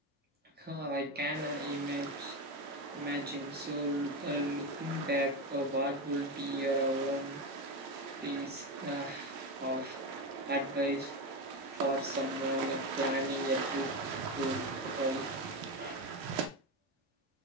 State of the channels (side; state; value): both; normal; correlation 0.15